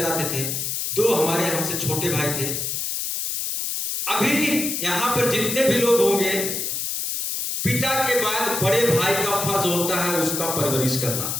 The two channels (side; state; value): left; noise; hiss, 2 dB below the sound